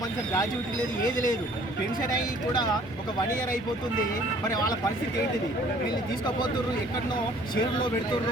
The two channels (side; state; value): both; normal; correlation 0.55